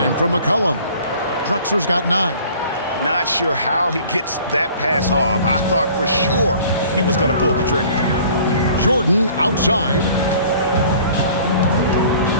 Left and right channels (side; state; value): both; inverted; correlation -0.50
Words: from McCollum. Drexler's got 9. Not sure how he gets that pass off. I thought for sure he was going to pull the trigger. Jordan outside.